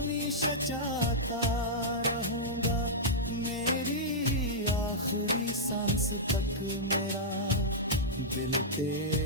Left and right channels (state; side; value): normal; both; correlation -0.10